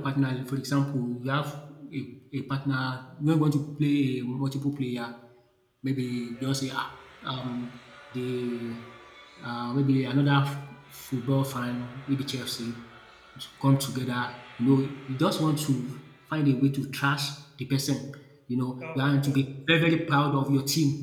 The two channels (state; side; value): identical; both; correlation 1.00